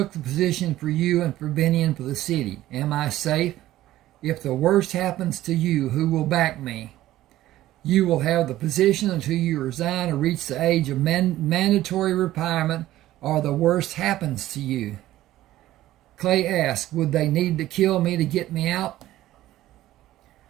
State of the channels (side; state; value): left; quieter; 14.7 dB